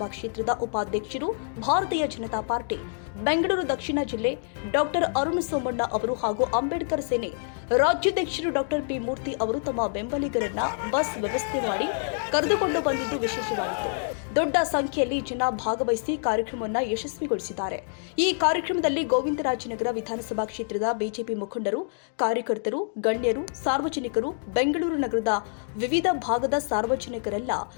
ಕ್ಷೇತ್ರದ ಉಪಾಧ್ಯಕ್ಷರು, ಭಾರತೀಯ ಜನತಾ ಪಾರ್ಟಿ ಬೆಂಗಳೂರು ದಕ್ಷಿಣ ಜಿಲ್ಲೆ ಡಾಕ್ಟರ್ ಅರುಣ್ ಸೋಮಣ್ಣ ಅವರು ಹಾಗೂ ಅಂಬೇಡ್ಕರ್ ಸೇನೆ ರಾಜ್ಯಾಧ್ಯಕ್ಷರು ಡಾಕ್ಟರ್ ಪಿ ಮೂರ್ತಿ ಅವರು ತಮ್ಮ ಬೆಂಬಲಿಗರನ್ನ ಬಸ್ ವ್ಯವಸ್ಥೆ ಮಾಡಿ ಕರೆದುಕೊಂಡು ಬಂದಿದ್ದು ವಿಶೇಷವಾಗಿತ್ತು. ದೊಡ್ಡ ಸಂಖ್ಯೆಯಲ್ಲಿ ಜನ ಭಾಗವಹಿಸಿ ಕಾರ್ಯಕ್ರಮವನ್ನು ಯಶಸ್ವಿಗೊಳಿಸಿದ್ದಾರೆ. ಈ ಕಾರ್ಯಕ್ರಮದಲ್ಲಿ ಗೋವಿಂದರಾಜನಗರ ವಿಧಾನಸಭಾ ಕ್ಷೇತ್ರದ ಬಿಜೆಪಿ ಮುಖಂಡರು, ಕಾರ್ಯಕರ್ತರು, ಗಣ್ಯರು, ಸಾರ್ವಜನಿಕರು, ಬೆಂಗಳೂರು ನಗರದ ವಿವಿಧ ಭಾಗದ ಸಾರ್ವಜನಿಕರೆಲ್ಲ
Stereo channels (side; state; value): right; silent; digital silence